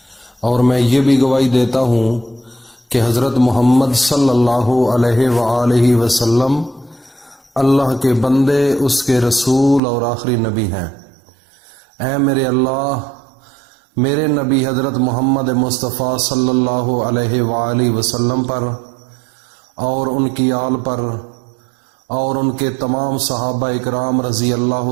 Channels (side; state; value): left; drops out; at 9.8 s